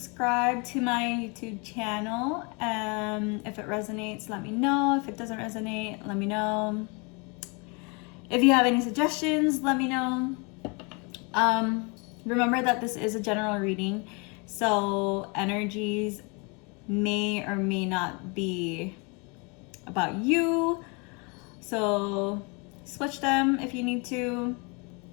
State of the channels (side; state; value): right; quieter; 31.3 dB